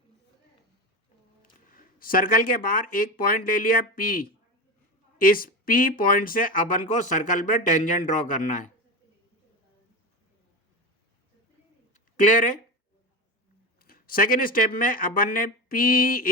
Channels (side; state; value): both; normal; correlation 0.21